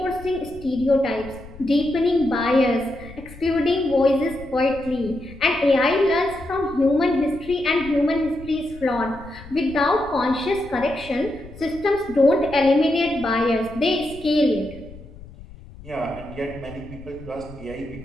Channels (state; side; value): noise; left; rumble, 18 dB below the sound